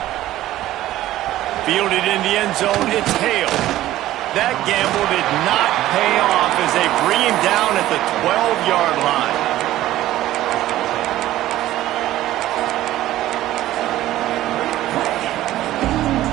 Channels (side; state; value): left; quieter; 14.6 dB